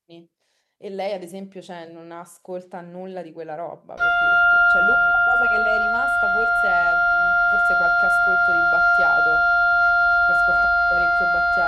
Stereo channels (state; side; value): identical; both; correlation 1.00